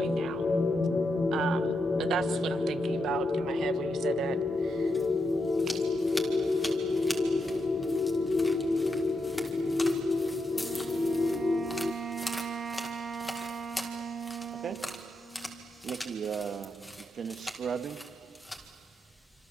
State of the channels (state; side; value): normal; both; correlation 0.84